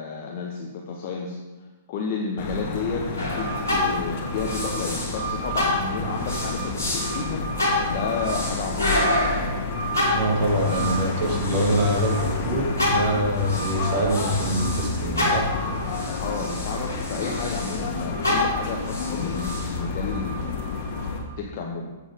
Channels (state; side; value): inverted; both; correlation -0.39